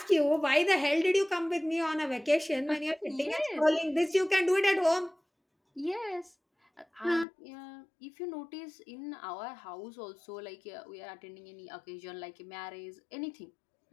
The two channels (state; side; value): drops out; right; at 7.2 s